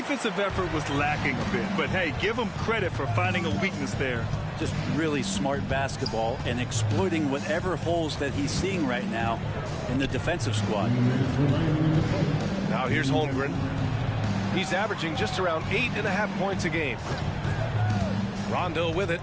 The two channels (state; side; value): identical; both; correlation 1.00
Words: effort was lacking a bit, but hey, give him credit for finding a weakness there. Just really smart basketball and exploiting whatever holes that he's seeing right now in the defensive squad. Now here's Holmgren. He's averaging just around 8.5 points a game. Rondo with it,